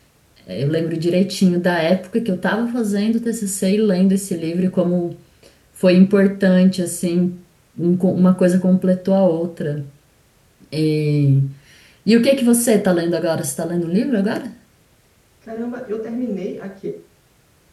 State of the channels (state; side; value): identical; both; correlation 1.00